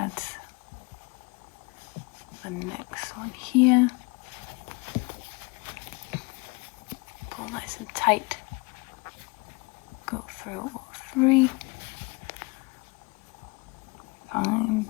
the next one here. Pull nice and tight. Go through all 3. Find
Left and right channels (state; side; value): quieter; right; 27.7 dB